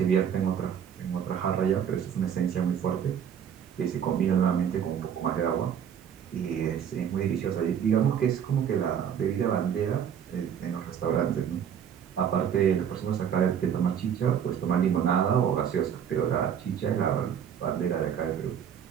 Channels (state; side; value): quieter; left; 8.5 dB